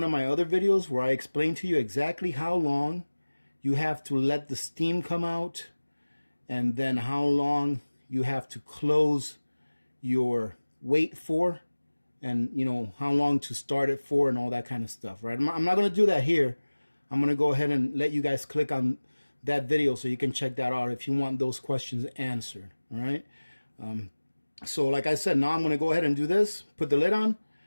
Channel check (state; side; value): inverted; both; correlation -1.00